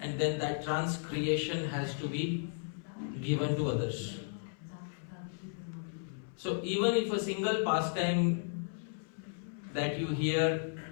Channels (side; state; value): right; silent; 55 dB below the other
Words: and then that transcreation has to be given to others. So even if a single pastime that you hear,